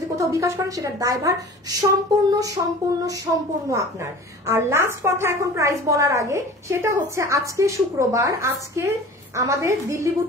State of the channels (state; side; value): normal; both; correlation 0.40